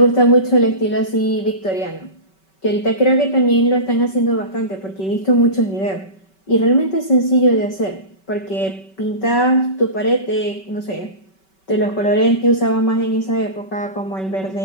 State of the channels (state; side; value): late; right; 5.2 ms